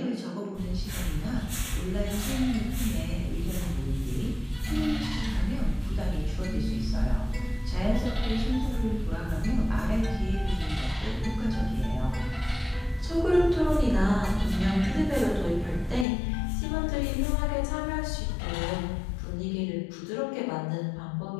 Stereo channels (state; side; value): drops out; right; at 16.1 s